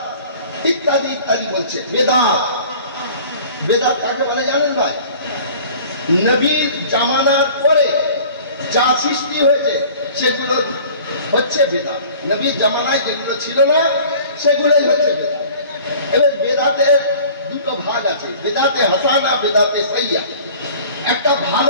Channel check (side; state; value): both; inverted; correlation -0.46